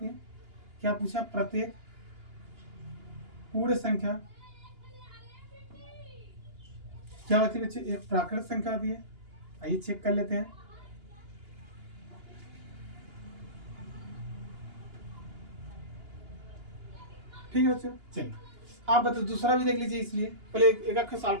है। क्या पूछा, प्रत्येक पूर्ण संख्या क्या होती है बच्चे, एक प्राकृतिक संख्या होती है। आइए चेक कर लेते हैं। ठीक है बच्चों, चलिए आप बताओ, दूसरा भी देख लीजिए, इसलिए पहले एक एक सवाल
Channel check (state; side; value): late; left; 2.9 ms